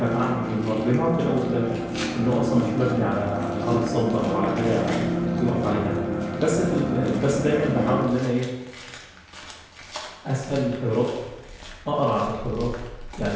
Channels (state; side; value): identical; both; correlation 1.00